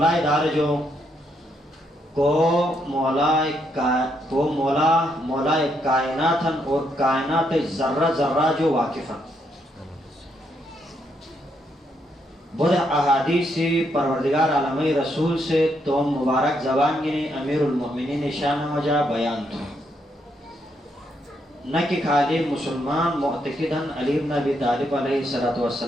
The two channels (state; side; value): normal; both; correlation 0.77